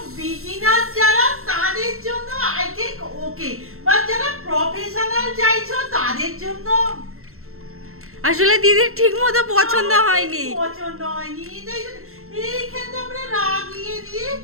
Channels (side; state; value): left; late; 0.62 ms